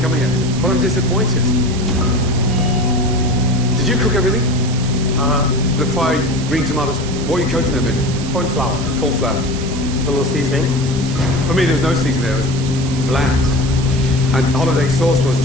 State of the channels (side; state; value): right; noise; hiss, 12 dB below the sound